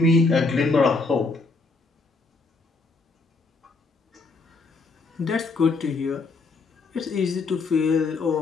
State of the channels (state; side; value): quieter; right; 3.9 dB